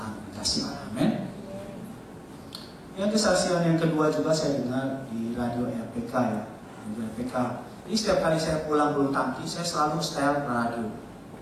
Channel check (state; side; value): identical; both; correlation 1.00